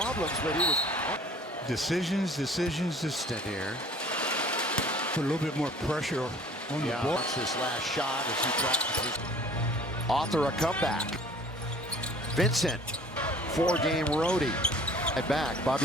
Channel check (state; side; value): normal; both; correlation 0.51